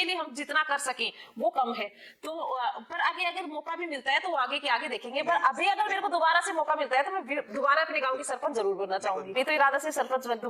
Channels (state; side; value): identical; both; correlation 1.00